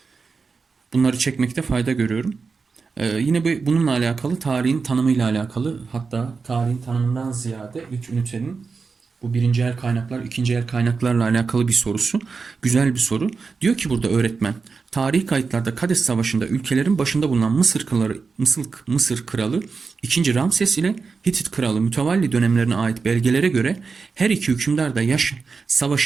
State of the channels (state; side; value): quieter; left; 4.8 dB